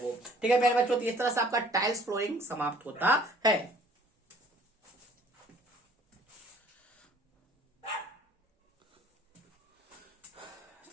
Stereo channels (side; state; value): both; normal; correlation 0.55